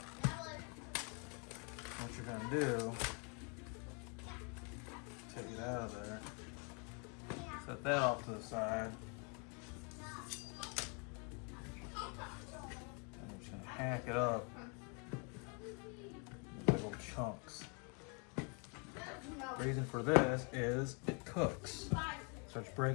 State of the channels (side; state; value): right; quieter; 35.8 dB